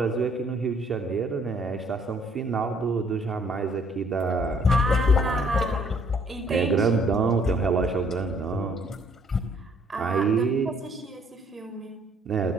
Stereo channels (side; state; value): both; normal; correlation 0.63